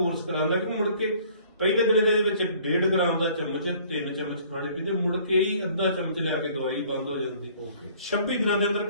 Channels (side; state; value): both; inverted; correlation -0.55